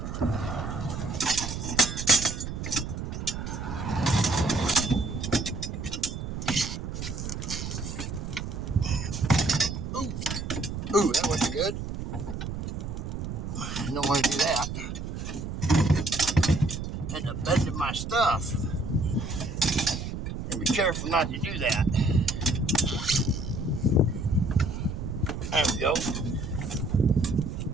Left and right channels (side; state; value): right; noise; rumble, 5 dB below the sound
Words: Ooh, that wasn't good. I don't want to do that. End up bending my stuff. And be careful not to do that. There we go.